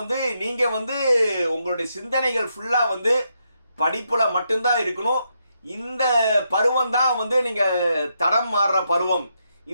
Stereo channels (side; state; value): both; inverted; correlation -0.81